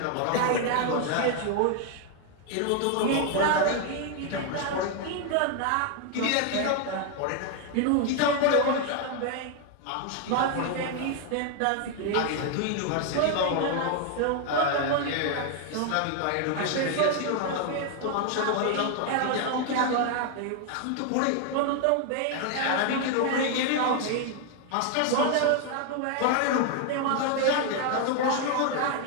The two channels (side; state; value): both; different; correlation 0.01